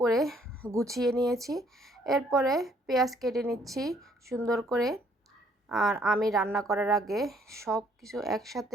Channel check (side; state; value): both; normal; correlation 0.64